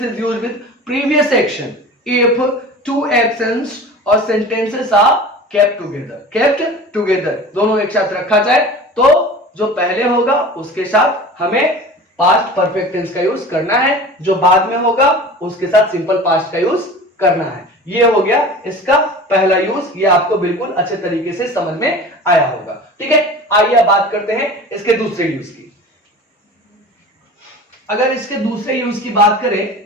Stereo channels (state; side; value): normal; both; correlation 0.38